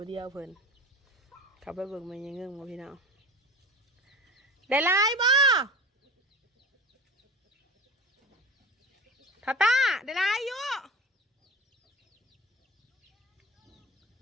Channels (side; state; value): both; normal; correlation 0.35